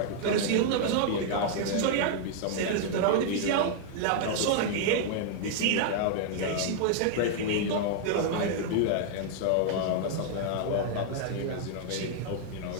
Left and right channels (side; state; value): both; different; correlation 0.00